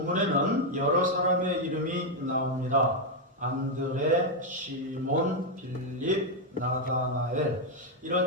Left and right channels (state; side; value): normal; both; correlation 0.02